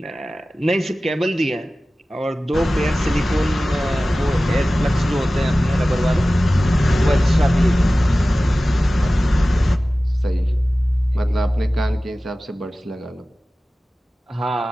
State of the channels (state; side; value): normal; both; correlation 0.96